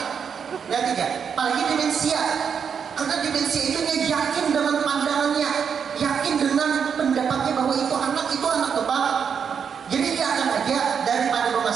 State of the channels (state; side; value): quieter; left; 7.0 dB